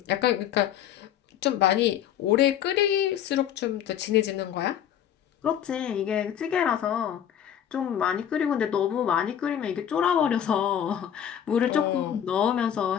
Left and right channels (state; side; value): quieter; right; 9.9 dB